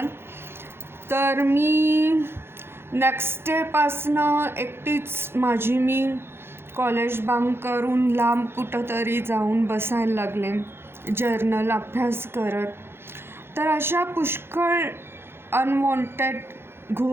तर मी नेक्स्ट डेपासनं एकटीच मी कॉलेज बंक करून लांब कुठंतरी जाऊन बसायला लागले जर्नल अभ्यास करत. तर अशा पुष्कळ अनवॉन्टेड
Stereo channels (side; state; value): left; late; 0.11 ms